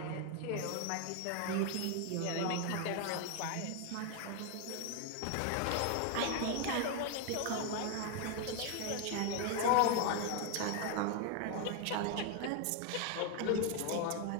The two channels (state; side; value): different; both; correlation 0.01